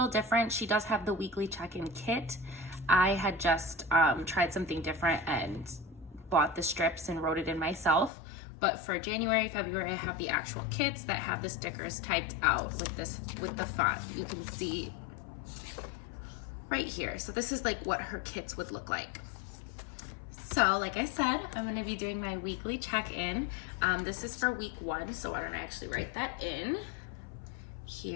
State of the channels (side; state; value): right; drops out; at 8.1 s